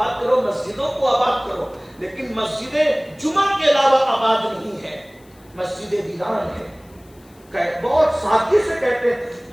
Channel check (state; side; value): noise; left; hiss, 30 dB below the sound